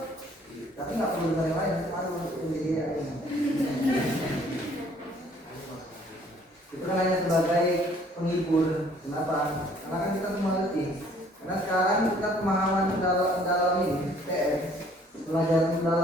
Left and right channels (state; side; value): normal; both; correlation 0.59